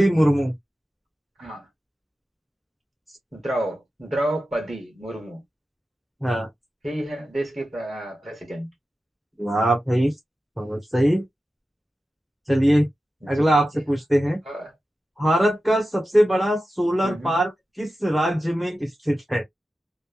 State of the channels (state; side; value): normal; both; correlation 0.93